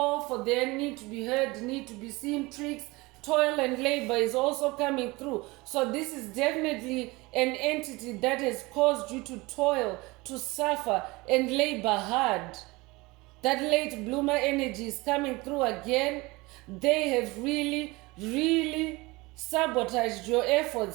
for their need to be heard, need to be seen, tricks. Toil and labor is also coming through. So this is definitely an entity that has caused you to toil, to suffer, and labor hard. That late bloomer energy is coming through again. They have really, really sabotaged your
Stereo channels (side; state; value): left; quieter; 23.0 dB